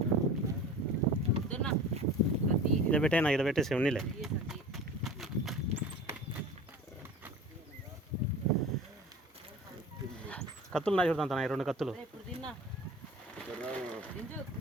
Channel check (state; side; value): normal; both; correlation 0.38